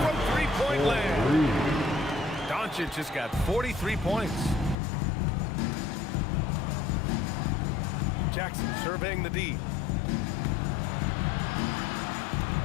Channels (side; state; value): right; drops out; at 4.8 s